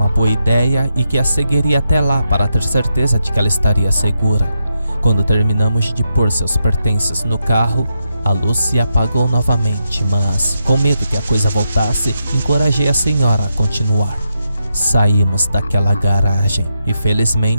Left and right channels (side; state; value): both; inverted; correlation -0.85